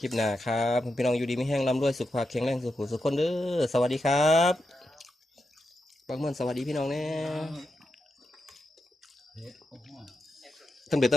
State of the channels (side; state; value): both; normal; correlation 0.88